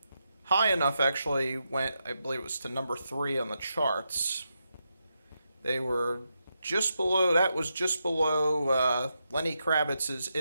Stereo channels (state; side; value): inverted; both; correlation -0.85